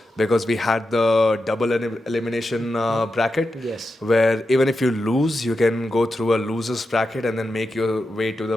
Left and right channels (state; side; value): normal; both; correlation 0.89